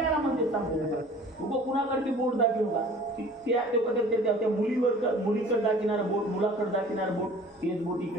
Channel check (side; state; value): both; normal; correlation 0.47